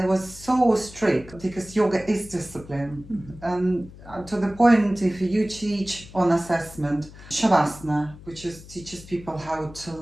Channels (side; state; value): left; noise; hum, 18 dB below the sound